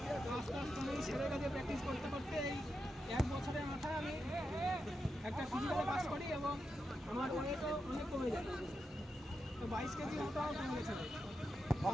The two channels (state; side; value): normal; both; correlation 0.89